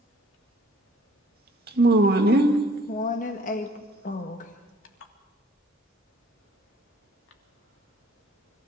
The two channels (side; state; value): both; normal; correlation 0.57